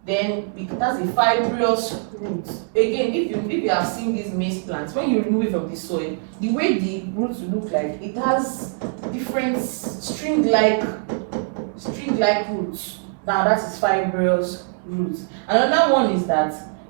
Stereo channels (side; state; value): left; silent; 61 dB below the other